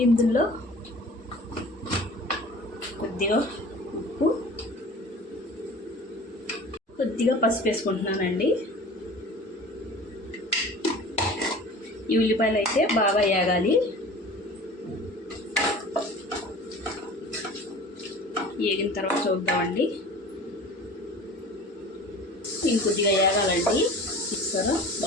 ఇందులో కొద్దిగా ఉప్పు, కొద్దిగా పసుపు వేసుకుంటున్నానండి. ఈ ఉల్లిపాయలు అయితే బాగా వేగాలి. వేగిన తర్వాత చూద్దామండి. ఇంకొద్దిగా వేగాలండి. చూస్తారా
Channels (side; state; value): both; normal; correlation 0.41